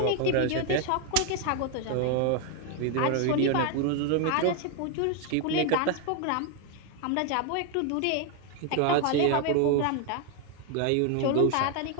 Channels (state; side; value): different; both; correlation 0.00